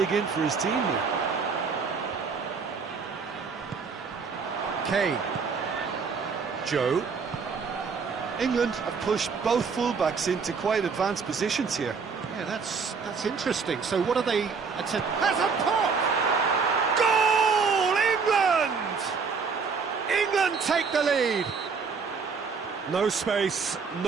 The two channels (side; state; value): left; quieter; 5.3 dB